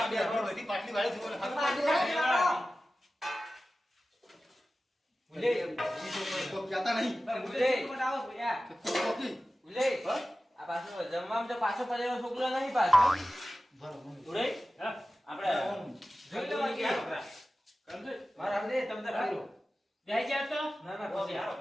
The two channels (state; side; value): normal; both; correlation 0.95